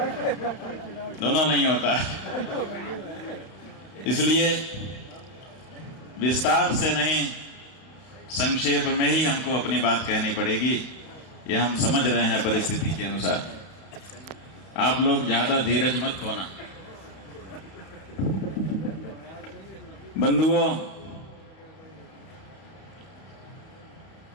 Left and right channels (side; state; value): right; late; 32 ms